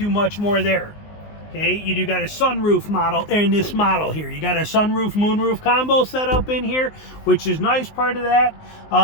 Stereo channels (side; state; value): right; late; 19 ms